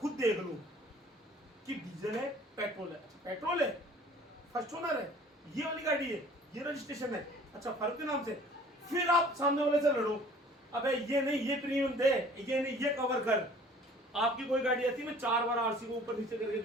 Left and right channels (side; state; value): both; normal; correlation 0.51